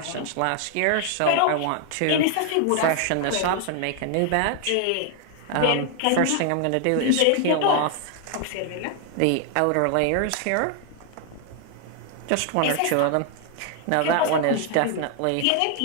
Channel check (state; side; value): different; both; correlation 0.00